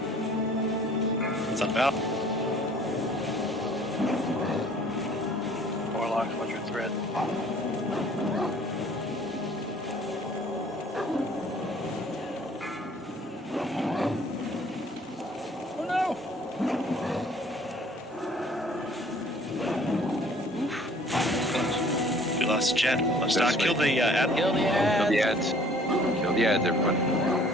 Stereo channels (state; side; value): normal; both; correlation 0.55